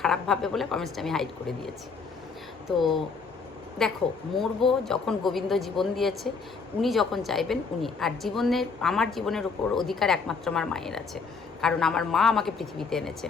খারাপ ভাববে বলে কমেন্টসটা আমি হাইড করে দিয়েছি। তো দেখো, মরবো যখন গোবিন্দ জীবন দিয়েছে, উনি যখন চাইবেন উনি, আর আমার জীবনের উপর অধিকার একমাত্র আমার মায়ের আছে, কারণ আমার মা আমাকে পৃথিবীতে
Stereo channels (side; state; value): right; quieter; 4.9 dB